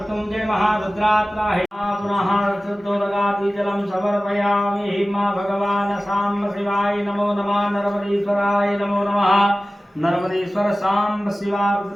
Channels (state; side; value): normal; both; correlation 0.97